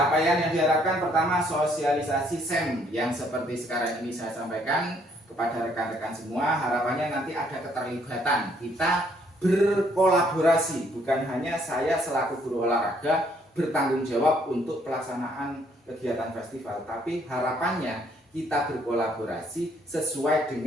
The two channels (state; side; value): normal; both; correlation 0.67